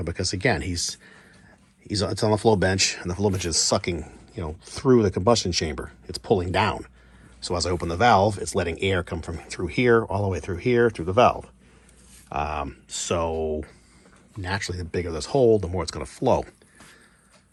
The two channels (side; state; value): both; identical; correlation 1.00